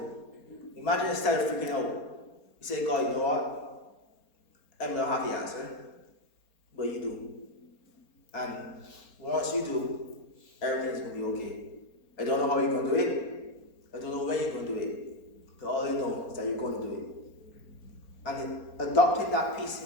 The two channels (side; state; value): right; late; 4.3 ms